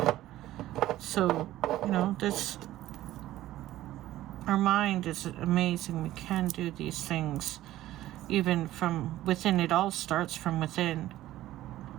So, you know, our mind is amazing. We can do these things even from within. It all starts from within.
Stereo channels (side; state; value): left; quieter; 14.7 dB